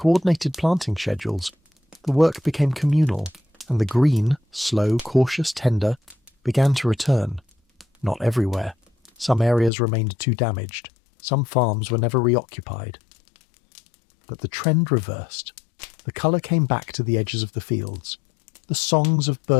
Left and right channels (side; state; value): right; drops out; at 9.7 s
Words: planting schedules. The work became communal, and the green, slow, cautious, tender, began to return. Not everywhere. Some areas remained too damaged. Some farms were never reoccupied. But the trend reversed. The colour came back to the edges of the fields. The songs of